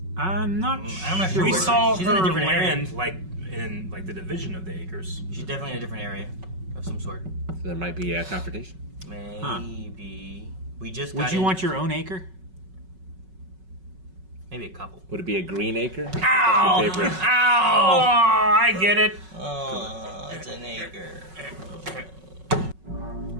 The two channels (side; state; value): left; late; 5.4 ms